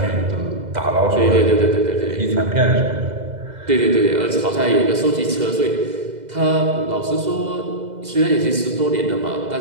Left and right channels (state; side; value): late; left; 2.0 ms